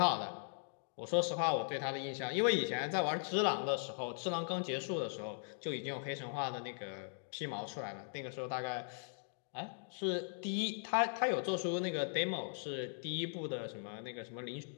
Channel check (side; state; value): right; silent; digital silence